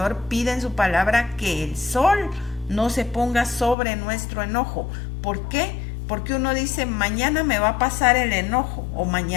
pide en su palabra que el sol no se ponga sobre nuestro enojo. ¿Por qué? Porque uno dice, mañana me va a pasar el enojo o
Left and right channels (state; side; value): drops out; right; at 3.8 s